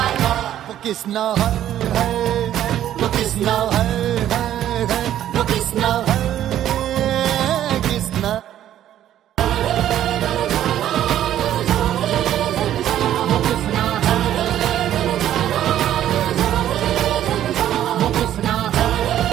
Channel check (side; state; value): left; quieter; 11.6 dB